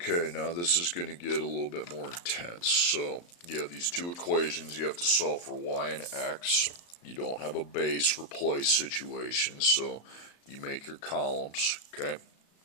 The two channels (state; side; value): late; right; 35 ms